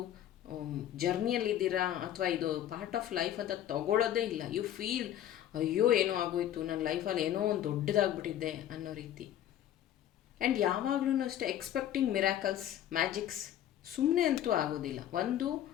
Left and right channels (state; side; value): quieter; right; 11.4 dB